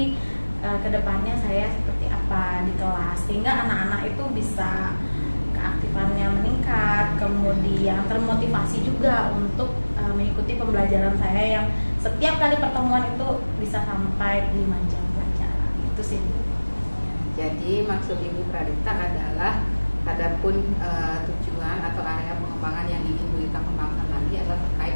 kedepannya saya seperti apa di kelas, sehingga anak-anak itu bisa keaktifannya meningkat, kemudian termotivasi juga untuk mengikuti pembelajaran saya yang setiap kali pertemuan itu bisa sampai 5 jam pelajaran. Itu sih. Jadi maksud Ibu Pralita adalah adapun tujuan atau area pengembangan yang ingin Bu Pralita kembangkan lagi adalah terkait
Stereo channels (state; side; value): inverted; both; correlation -1.00